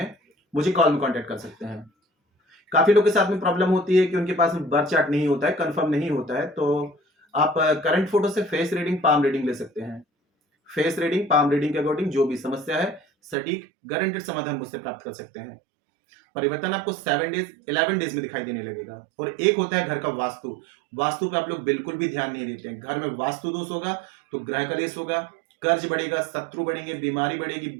मुझे कॉल में कांटेक्ट कर सकते हैं। काफी लोग के साथ में प्रॉब्लम होती है कि उनके पास में बर्थ चार्ट नहीं होता है, कंफर्म नहीं होता है, तो आप करंट फोटो से फेस रीडिंग, पाम रीडिंग ले सकते हैं। फेस रीडिंग, पाम रीडिंग के अकॉर्डिंग जो भी समस्या है सटीक गारंटेड समाधान मुझसे प्राप्त कर सकते हैं। परिवर्तन आपको 7 डेज 11 डेज में दिखाई देने लगेगा। और एक होता है घर का वास्तु। वास्तु पे आप लोग बिल्कुल भी ध्यान नहीं देते हैं। घर में वास्तु दोष होगा तो ग्रह कलेश होगा, कर्ज बढ़ेगा, शत्रु बढ़ेंगे, बीमारी बढ़ेगी,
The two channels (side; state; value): left; drops out; at 13.4 s